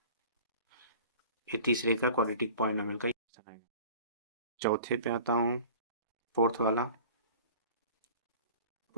ये तीसरे का क्वाड्रेटिक पॉलिनोमियल का इक्वेशन आएगा। चौथे पे आता हूँ, फोर्थ वाला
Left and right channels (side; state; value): both; inverted; correlation -0.43